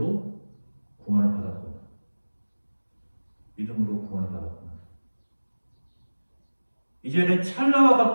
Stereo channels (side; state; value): both; inverted; correlation -1.00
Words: 구원을 받았구나. 믿음으로 구원을 받았구나. 이제는 찰나와